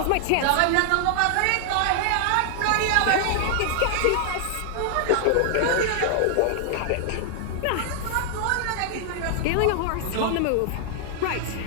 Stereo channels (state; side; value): different; both; correlation 0.00